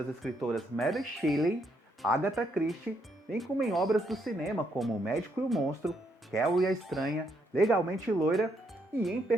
escritoras Mary Shelley, Agatha Christie, bem como em obras do cinema como O Médico e o Monstro, Carrie a Estranha, Legalmente Loira, e em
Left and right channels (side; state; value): both; normal; correlation 0.75